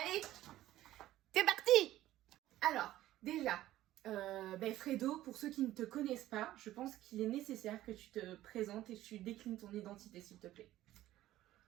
c'est parti. Alors, déjà, Fredo, pour ceux qui ne te connaissent pas, je pense qu'il est nécessaire que tu te présentes et que tu déclines ton identité, s'il te plaît.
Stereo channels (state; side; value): quieter; left; 14.6 dB